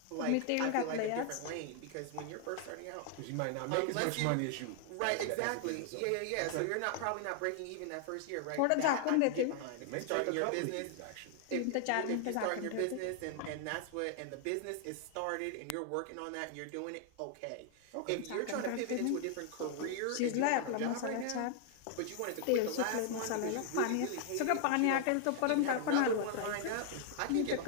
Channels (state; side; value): different; both; correlation 0.00